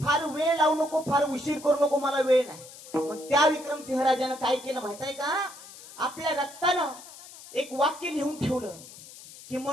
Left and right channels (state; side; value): noise; left; hiss, 17 dB below the sound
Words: वेळ लावू नको, फार उशीर करू नको, मला वेळ नाही. मग त्या विक्रमसिंह राजानं काय केलं माहित आहे का? आपल्या रक्तानं एक वाक्य लिहून ठेवलं की,